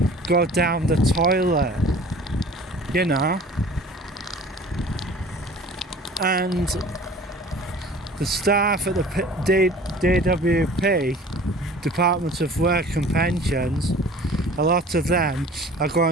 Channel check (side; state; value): both; normal; correlation 0.46